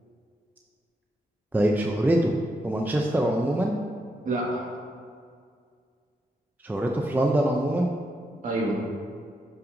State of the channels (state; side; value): normal; both; correlation 0.82